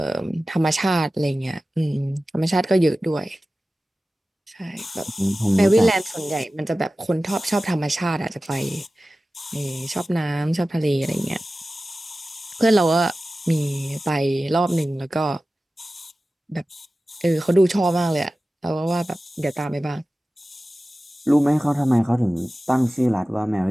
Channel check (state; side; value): normal; both; correlation 0.96